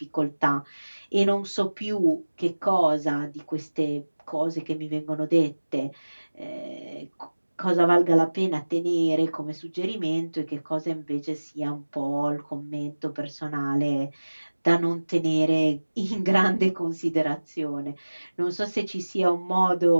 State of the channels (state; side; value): inverted; both; correlation -1.00